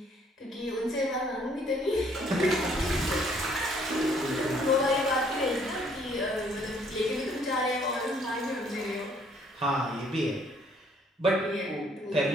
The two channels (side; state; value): both; normal; correlation 0.63